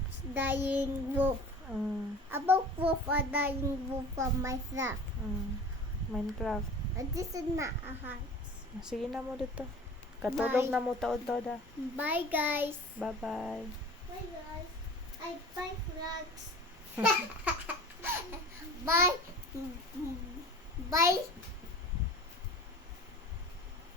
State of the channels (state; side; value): normal; both; correlation 0.40